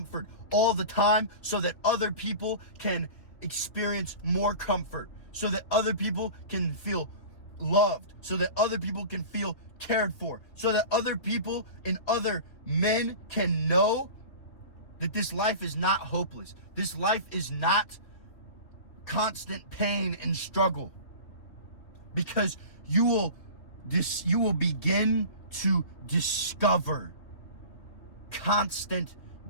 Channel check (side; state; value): right; late; 2.8 ms